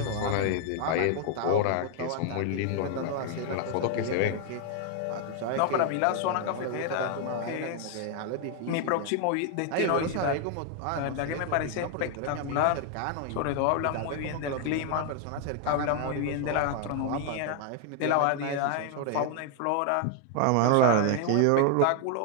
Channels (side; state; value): both; different; correlation 0.00